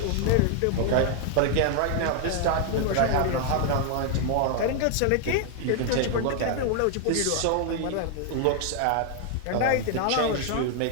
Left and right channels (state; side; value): different; both; correlation 0.00